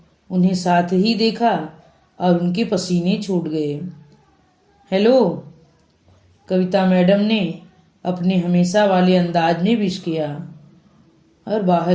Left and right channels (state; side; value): identical; both; correlation 1.00